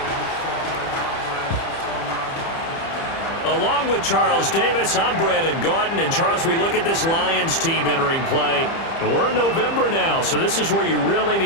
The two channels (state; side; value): late; right; 30 ms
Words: Along with Charles Davis, I'm Brandon Gaudin. And Charles, we look at this Lions team entering play. And we're in November now, so this is where you really